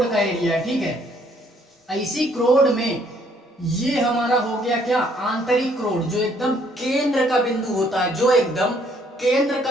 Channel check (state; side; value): normal; both; correlation 0.65